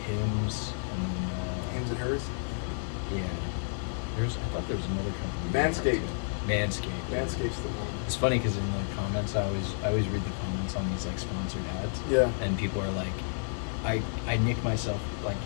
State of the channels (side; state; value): right; silent; digital silence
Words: Hims and Hims and hers. yeah. I thought there was another company. Manscaped. Manscaped. Manscaped's the one. It's funny because in the comments, I always read the comments on these like sponsored ads. Yeah. And people are like, I nick myself like